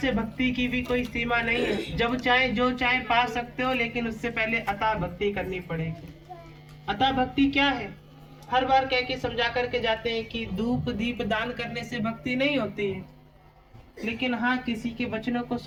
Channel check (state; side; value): identical; both; correlation 1.00